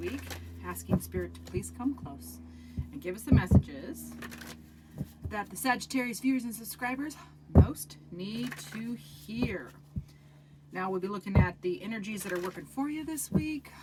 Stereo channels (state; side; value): identical; both; correlation 1.00